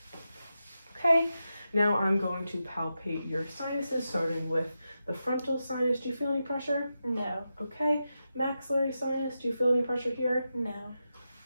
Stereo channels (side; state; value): both; inverted; correlation -0.89